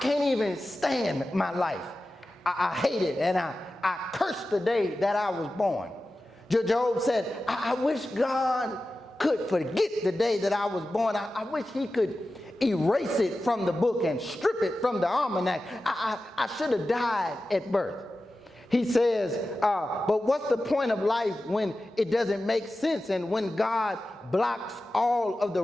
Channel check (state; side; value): normal; both; correlation 0.94